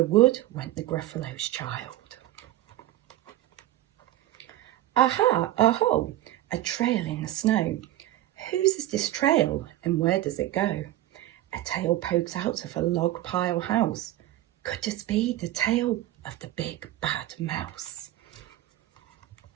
wood went the Gruffalo's child. Aha, aho, a trail in the snow. Whose is this trail and where does it go? A tail pokes out of a log pile house. Could this be the tail of the big bad mouse?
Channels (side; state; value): left; quieter; 14.6 dB